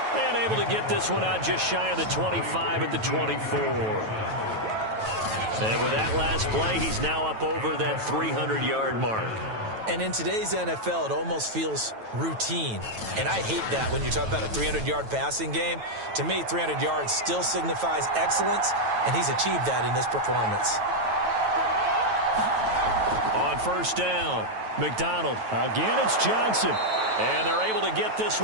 And able to get this one out just shy of the 25 at the 24. And with that last play, he's now up over that 300-yard mark. And in today's NFL, it almost feels routine. And I hate that when you talk about a 300-yard passing game. To me, 300 yards still signifies excellence, and he's achieved that in this performance. On 1st down, McDonald. Again, it's Johnson. And they're able to get this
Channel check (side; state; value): left; late; 9.1 ms